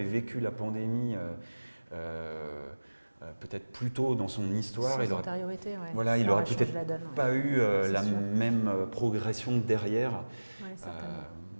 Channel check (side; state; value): both; inverted; correlation -1.00